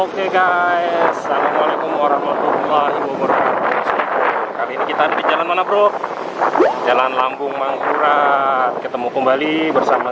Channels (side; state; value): both; identical; correlation 1.00